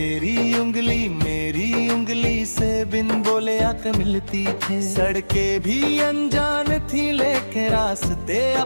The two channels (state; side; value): inverted; both; correlation -1.00